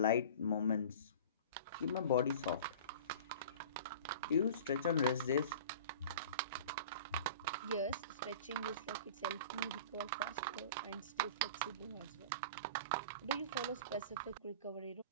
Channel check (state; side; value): inverted; both; correlation -0.39